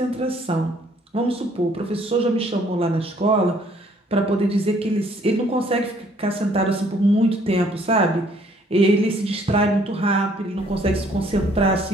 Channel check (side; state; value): both; normal; correlation 0.62